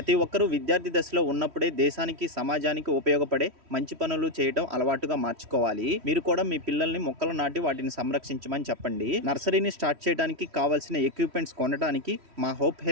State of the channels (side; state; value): left; late; 3.1 ms